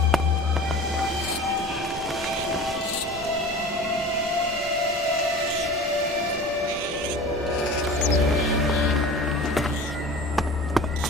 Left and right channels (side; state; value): both; normal; correlation 0.38